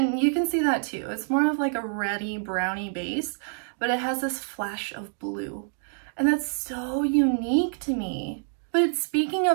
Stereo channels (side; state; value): left; silent; digital silence